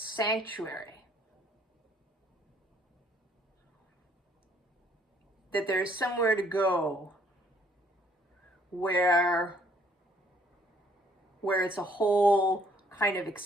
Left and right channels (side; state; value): both; normal; correlation 0.63